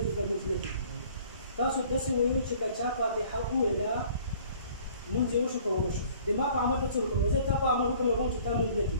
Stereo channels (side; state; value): both; inverted; correlation -0.53